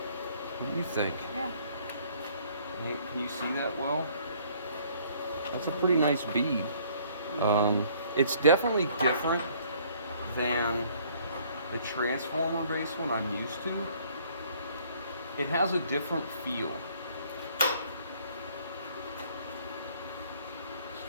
What do you think? Yeah. Can you see that well? That's a pretty nice bead. It's definitely different than the transformer based one I'm used to, it has a different feel. Let's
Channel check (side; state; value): both; inverted; correlation -0.60